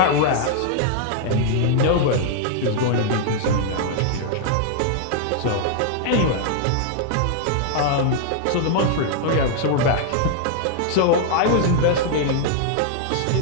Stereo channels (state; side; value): different; both; correlation -0.01